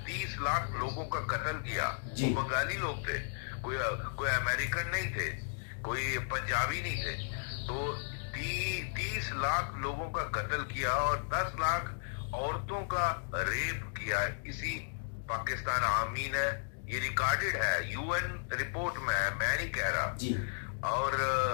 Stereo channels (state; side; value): silent; right; digital silence